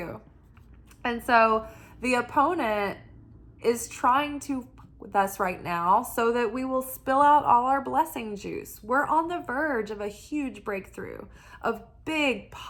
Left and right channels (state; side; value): identical; both; correlation 1.00